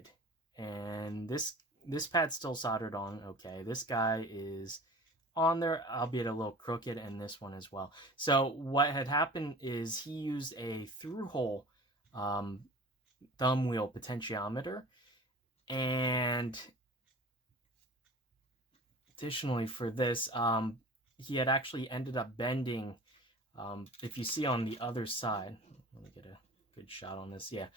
and this pad's still soldered on. Okay, this guy is on there, albeit a little crooked, and this one as well. So what had happened is he used a through hole thumb wheel potentiometer. And additionally for this, he had actually ended up bending, if you see on the other side, let me get a good shot on this. Yeah,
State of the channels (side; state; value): both; normal; correlation 0.40